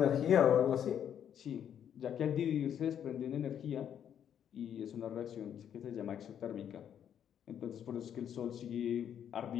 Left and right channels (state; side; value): quieter; right; 9.2 dB